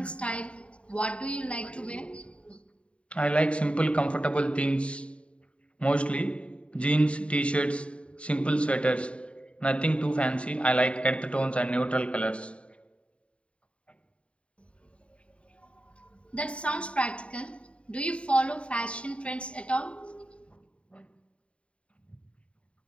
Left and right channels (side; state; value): right; late; 0.060 ms